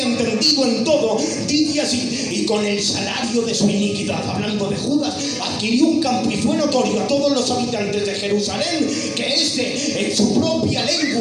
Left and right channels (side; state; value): both; identical; correlation 1.00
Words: en todo, dice así: y con el salario de su iniquidad, hablando de Judas, adquirió un campo y fue notorio a todos los habitantes de Jerusalén que este, en su propia